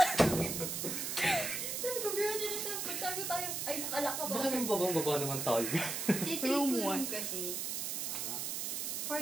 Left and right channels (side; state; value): right; noise; hiss, 2 dB below the sound